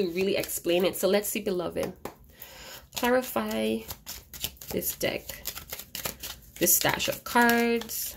really explain it. So let's see, beloved, clarify this deck, this stash of cards.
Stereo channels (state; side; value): identical; both; correlation 1.00